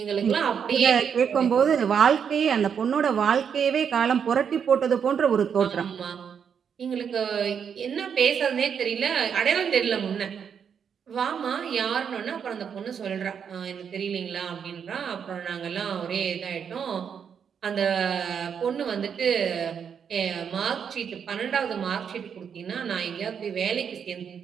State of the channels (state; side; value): quieter; left; 7.4 dB